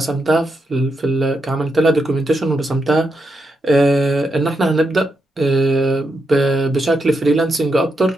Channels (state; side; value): normal; both; correlation 0.84